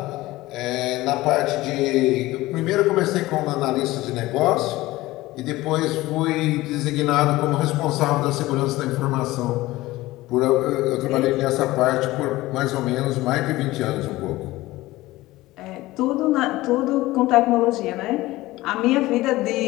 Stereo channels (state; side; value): quieter; right; 18.2 dB